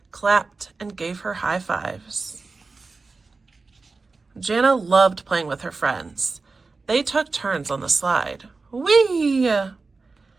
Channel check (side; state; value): left; quieter; 4.0 dB